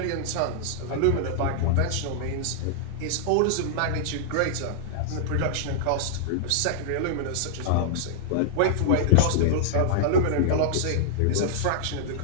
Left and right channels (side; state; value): both; different; correlation -0.01